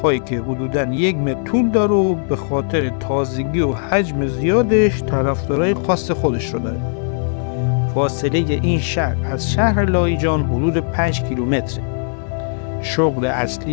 که حدوداً 1 متر طول داره و به خاطر تازگی و حجم زیادش طرفدارای خاص خودش رو داره. فاصله این شهر از شهر لاهیجان حدود 5 کیلومتره. شغل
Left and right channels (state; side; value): silent; right; 67 dB below the other